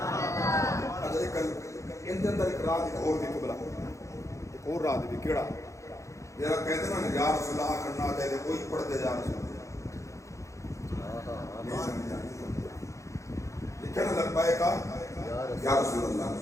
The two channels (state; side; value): late; right; 0.15 ms